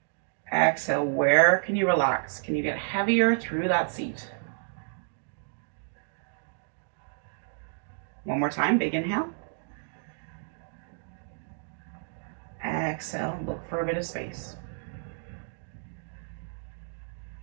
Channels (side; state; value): left; silent; digital silence